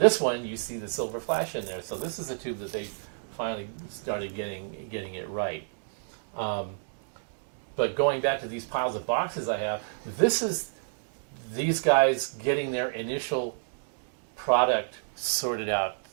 one, you see the silver flash in there. So this is a tube that they finally started getting it right. But going back to these piles of boxes I have, this is these guys getting their initial product sorted out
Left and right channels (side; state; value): left; silent; digital silence